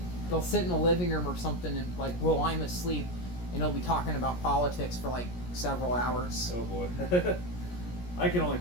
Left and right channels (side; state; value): right; late; 17 ms